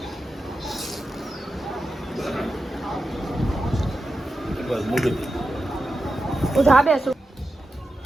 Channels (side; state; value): both; normal; correlation 0.90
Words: હું ધાબે છું.